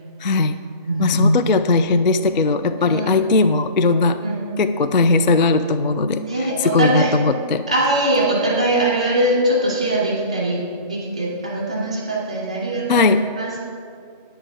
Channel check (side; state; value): both; inverted; correlation -0.37